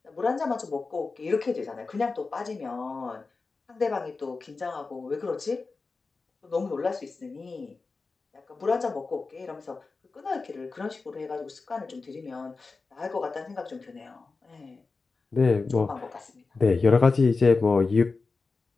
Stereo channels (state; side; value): quieter; right; 4.1 dB